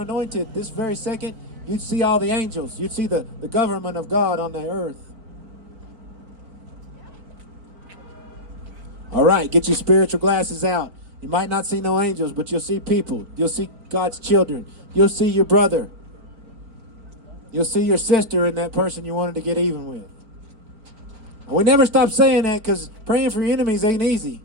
this very second, you'd see all the angels. You'd see the government of God on the earth. All right, get your spiritual glasses out. You might not see no angels, but you'll see people. You'll see God's children. You'll see your brother. You'll see your sister in that person you wanted to get even with. And we never stop saying that because praying for your enemies ain't easy.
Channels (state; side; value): late; left; 4.4 ms